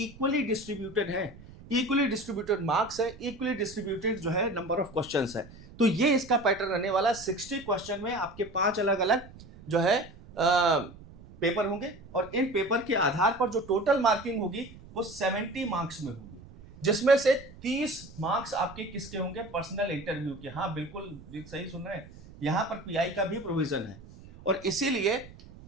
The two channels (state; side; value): noise; right; rumble, 19 dB below the sound